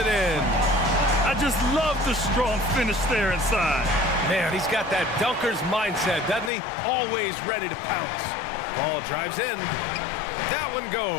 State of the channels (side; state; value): right; drops out; at 6.5 s